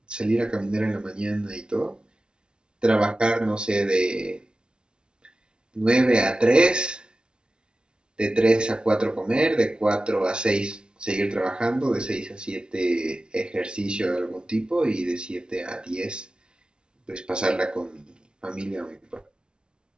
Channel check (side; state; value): left; late; 0.054 ms